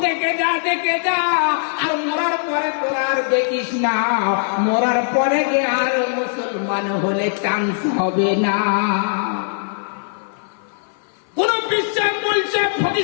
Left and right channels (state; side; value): silent; right; 62 dB below the other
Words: দেখে যা, দেখে যা, আর মরার পরে তোরা আর দেখিস না, মরার পরে যে আর মুসলমান হলে চান্স হবে না। কোন বিশ্বাস বলছে,